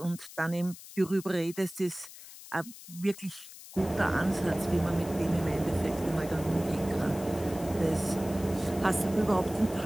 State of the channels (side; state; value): left; noise; hiss, 16 dB below the sound